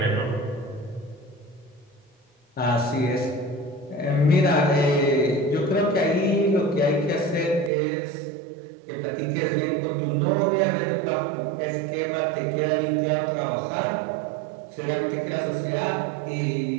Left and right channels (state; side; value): drops out; left; at 7.7 s